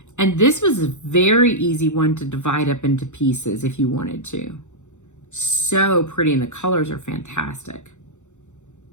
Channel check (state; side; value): late; right; 0.84 ms